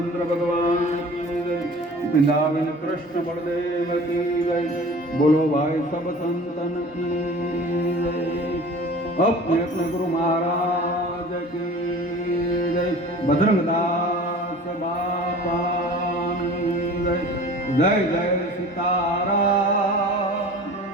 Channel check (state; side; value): normal; both; correlation 0.42